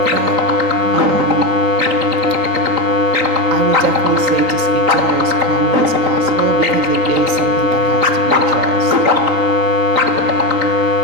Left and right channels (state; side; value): late; left; 3.9 ms